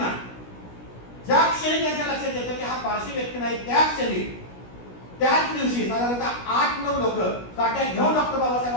ज्या क्षणी त्यांच्या लक्षात येतं की हा पारशी व्यक्ती नाही, त्या क्षणी त्याच दिवशी साधारणतः 8-9 लोक काट्या घेऊन डॉक्टर बाबासाहेब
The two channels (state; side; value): late; right; 16 ms